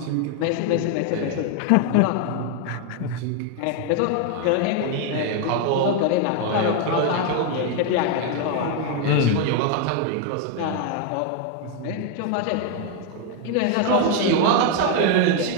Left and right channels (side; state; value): both; different; correlation 0.01